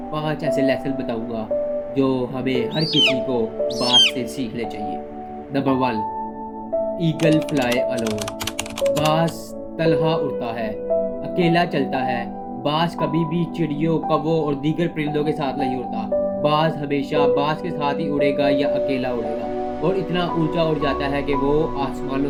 5 ऐसे लेसन बताऊंगा जो हमें हर किसी को बाज से सीखने चाहिए। Number 1, eagle fly alone. बाज तन्हा उड़ता है, अकेला चलता है। बाज कभी भी चिड़ियों, कौवों और दीगर परिंदों के साथ नहीं उड़ता। बाज हमेशा बाज के साथ ही उड़ेगा या अकेला उड़ेगा, और इतना ऊंचा उड़ जाता है कि वो आसमानों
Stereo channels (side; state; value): both; identical; correlation 1.00